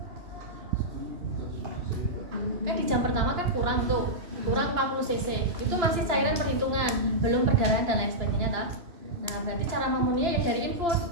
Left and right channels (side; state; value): left; late; 2.9 ms